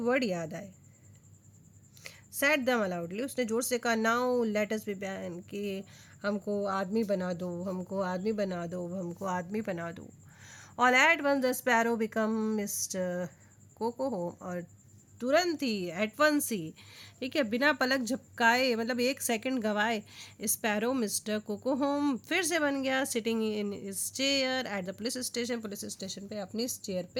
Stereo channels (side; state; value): both; identical; correlation 1.00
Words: याद आए। सेड दम अलाउडली, उसने जोर से कहा now let us be man, कि हमको आदमी बना दो, हमको आदमी बना दो, हमको आदमी बना दो। All at once the sparrow become mister Kokohom, और तुरंत ही, एट वंस ही, ठीक है, बिना पलक झपकाए, मतलब 1 सेकंड गवाए, स्पैरो मिस्टर कोकोहोम फिर से बन गया sitting in his chair at the police station, police station पे अपनी चेयर